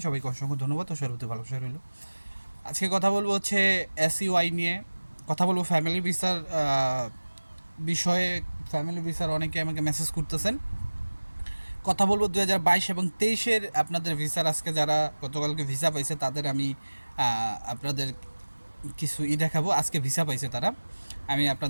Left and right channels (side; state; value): both; inverted; correlation -1.00